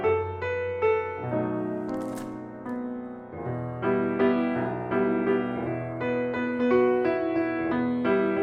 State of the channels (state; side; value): identical; both; correlation 1.00